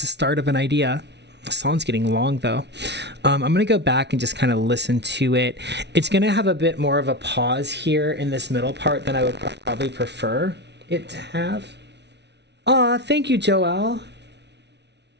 a start of an idea. The song's getting long though. I'm gonna go back and just kind of listen to it. It's gonna have a bit more of a pause here in this middle part than I would probably prefer it to have. Aw, thank you, Joelle.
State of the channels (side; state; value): left; late; 0.50 ms